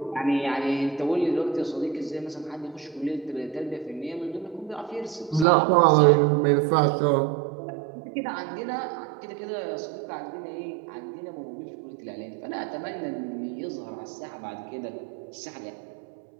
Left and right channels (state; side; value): drops out; left; at 5.5 s